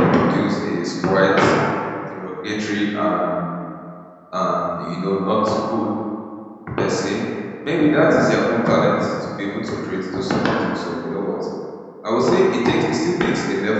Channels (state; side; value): identical; both; correlation 1.00